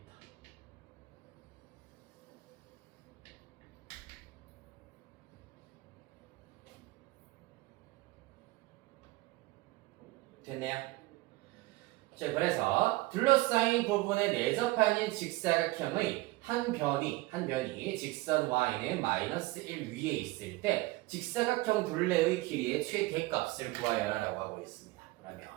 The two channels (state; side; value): quieter; left; 20.6 dB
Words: 됐네요. 자, 그래서 둘러싸인 부분에 내접하는 직사각형의 한 변이 직선 y는 -1 위에 있을 때 직사각형 둘레의 길이의 최대값을 구하여라 라고 하고 있습니다.